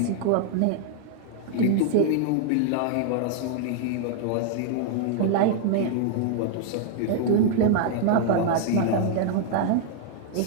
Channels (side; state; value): both; different; correlation 0.00